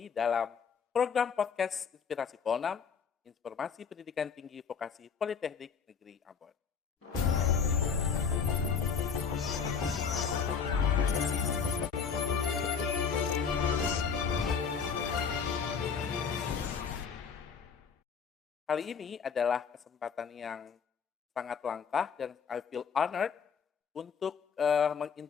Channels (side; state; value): right; quieter; 6.3 dB